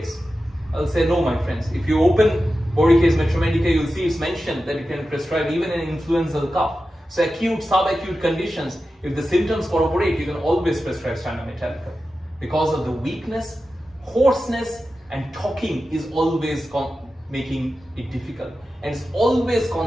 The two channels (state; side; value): normal; both; correlation 0.92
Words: I'll say no, my friends. If you open Borica's Metromedica, you'll see it's mentioned that you can prescribe even an influenza cough. So acute, subacute conditions, if the symptoms corroborate, you can always prescribe Stannum Metallicum. Because of the weakness, hoarseness, and talking is always making it difficult. And it's always